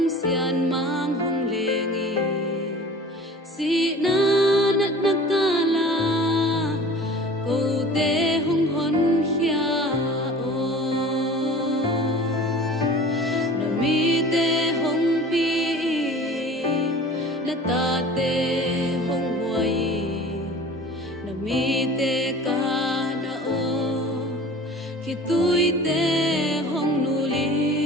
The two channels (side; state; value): both; normal; correlation 0.42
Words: sian mang hong lengi si na nat nakala ko te hong hon hia o na mi te hong pi na ta te hong huai na mi te ka na o khi tui te hong nu li